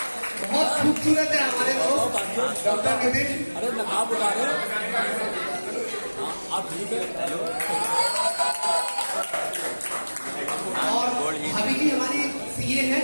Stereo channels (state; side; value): inverted; both; correlation -1.00